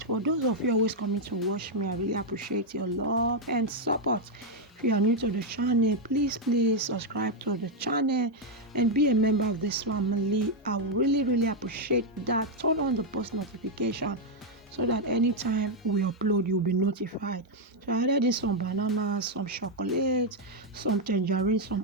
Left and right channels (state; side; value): normal; both; correlation 0.01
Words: For those of you always coming to watch me, I really appreciate your love and support. If you are new to the channel, please subscribe to the channel and be a member of this family. I will really appreciate that. Turn on the post notification so that anytime we upload, you'll be notified. So I added in some bananas, some chocolate, some tangerine,